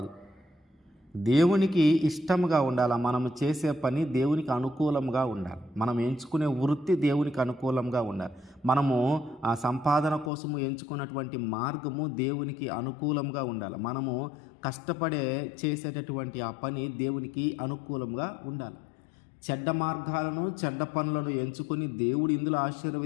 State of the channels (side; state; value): right; drops out; at 10.3 s